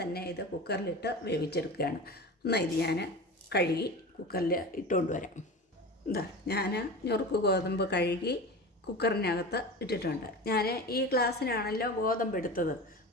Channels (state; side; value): normal; both; correlation 0.31